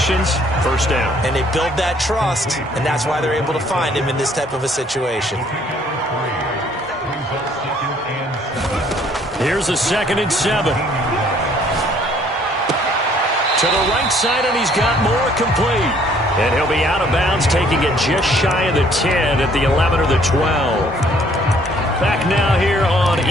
1st down. And they build that trust, and that's why they're able to find him in this type of a situation. Here's a 2nd and 7. To the right side, and he's got Moore complete. And he'll be out of bounds, taking it just shy of the 10 at the 11 or the 12. Back now here on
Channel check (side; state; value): both; normal; correlation 0.61